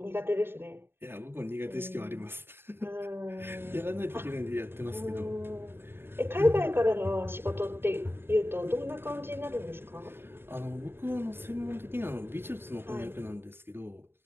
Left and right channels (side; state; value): left; late; 0.11 ms